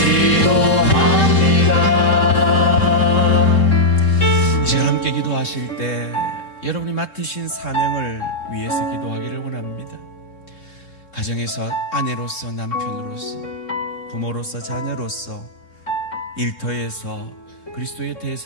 이 시간 함께 기도하실 때 여러분이 맡으신 사명을 위해서 기도하기를 원합니다. 가정에서 아내로서, 남편으로서, 부모로서, 자녀로서, 일터에서 그리스도의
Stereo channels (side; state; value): right; late; 3.7 ms